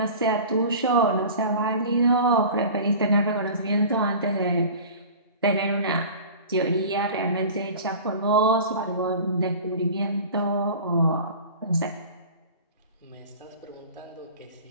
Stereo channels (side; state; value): both; inverted; correlation -0.39